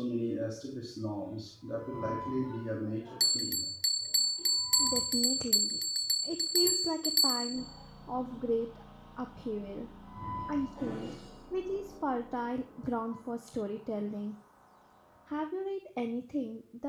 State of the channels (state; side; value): identical; both; correlation 1.00